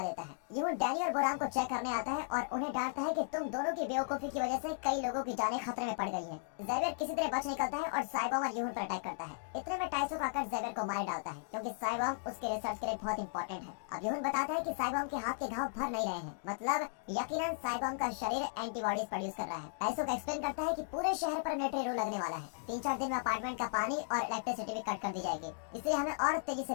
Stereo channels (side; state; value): right; silent; digital silence